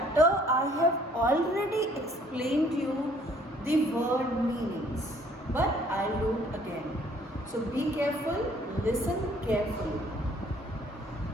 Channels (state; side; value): normal; both; correlation 0.59